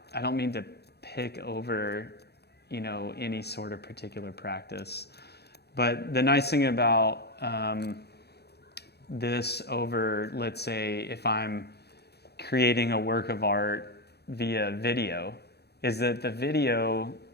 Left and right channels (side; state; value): right; late; 0.48 ms